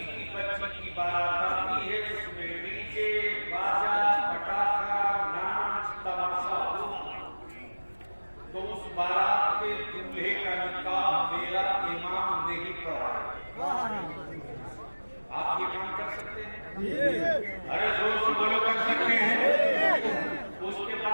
की बच्ची की बारात आती है उसमें डीजे बाजा पटाखा नाच तमाशा हो तो उस बारात के दूल्हे का निकाह मेरा इमाम नहीं कराएगा। आप ये काम कर सकते हैं? अरे जोर से बोलो, कर सकते हैं। उसके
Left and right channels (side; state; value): both; inverted; correlation -1.00